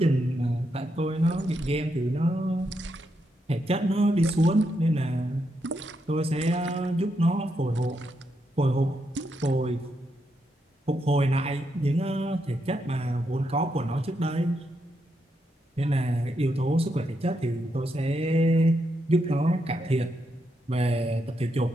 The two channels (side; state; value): both; normal; correlation 0.81